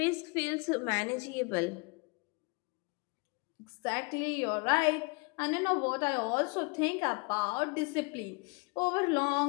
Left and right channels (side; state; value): right; quieter; 30.9 dB